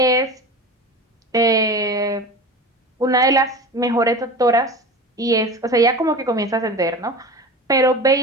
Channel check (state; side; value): normal; both; correlation 0.32